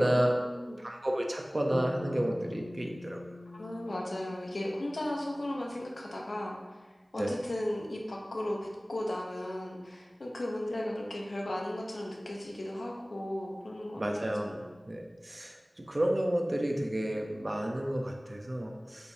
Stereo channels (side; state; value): both; normal; correlation 0.98